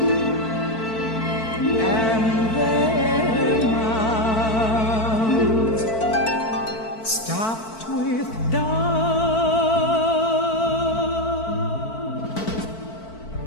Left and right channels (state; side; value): late; right; 4.5 ms